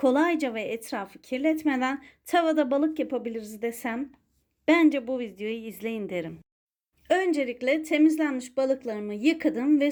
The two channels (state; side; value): identical; both; correlation 1.00